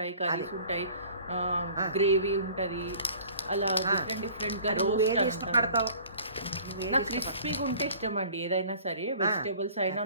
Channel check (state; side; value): inverted; both; correlation -0.49